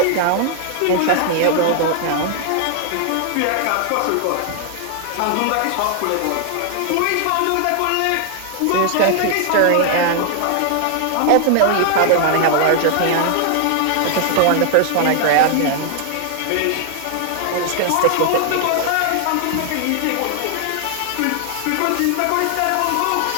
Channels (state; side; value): different; both; correlation 0.00